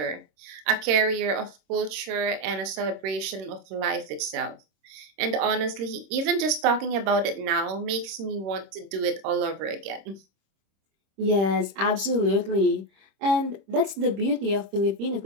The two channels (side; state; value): left; late; 26 ms